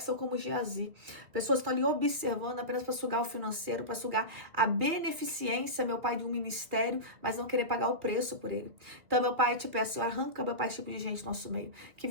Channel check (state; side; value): late; left; 2.1 ms